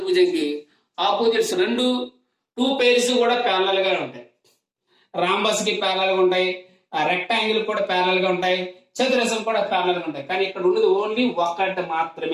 ఆపోజిట్స్ టూ పేర్స్ కూడా ప్యారలల్ గా ఉంటాయి. రాంబస్ కి ప్యారలల్ గా ఉంటాయి, రెక్టాంగిల్ కూడా ప్యారలల్ గా ఉంటాయి, చతురస్రం కూడా ప్యారలల్ గా ఉంటాయి. కానీ ఇక్కడ ఉన్నది ఓన్లీ ఒకటి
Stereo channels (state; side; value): identical; both; correlation 1.00